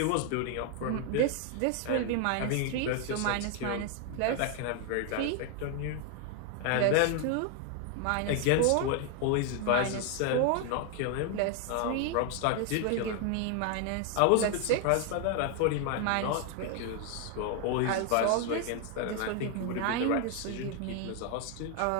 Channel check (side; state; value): both; different; correlation 0.00